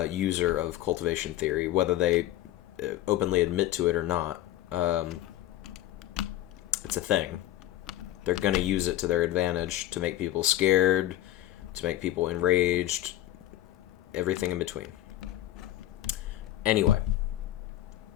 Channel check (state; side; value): quieter; right; 13.9 dB